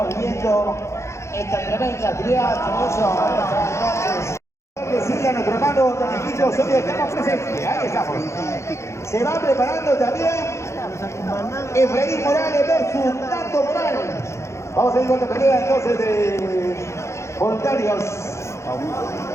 viviendo esta tremenda actividad. Con eso, entonces, decirle a nuestro hermano Domingito Osorio, estamos presentes. Ahí estamos. Se va preparando también Efraín Morales versus Nando Morales. Vamos a ir con la pelea entonces de voluntarios.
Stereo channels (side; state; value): right; late; 0.14 ms